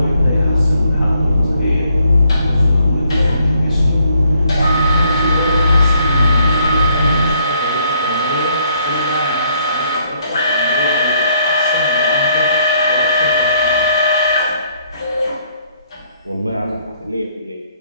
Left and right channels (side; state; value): both; inverted; correlation -0.68